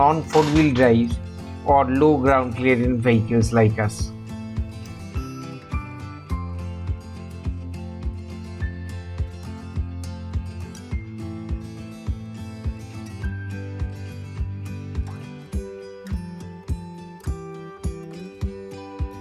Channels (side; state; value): both; identical; correlation 1.00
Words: four-wheel drives or low ground clearance vehicles like us.